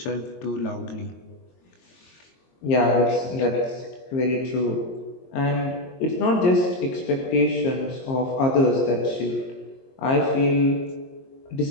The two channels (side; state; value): right; late; 22 ms